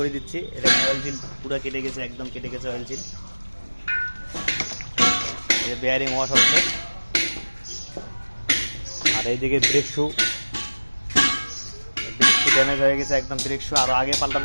দিচ্ছি। এটা অয়েল সিল পুরো কেটে গেছে, একদম কেটে গেছে অয়েল সিল। এই বেয়ারিং ওয়াশ হচ্ছে। আর এইদিকে ব্রেক শু ড্যামেজ হয়ে গেছে একদম। ব্রেক শু আরো আগে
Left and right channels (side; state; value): both; inverted; correlation -1.00